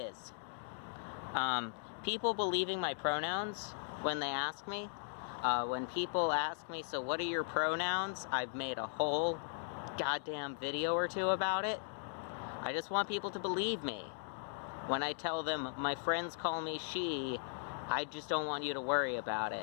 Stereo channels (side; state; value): right; silent; digital silence